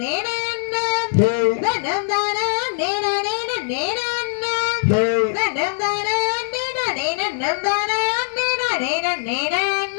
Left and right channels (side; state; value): right; silent; digital silence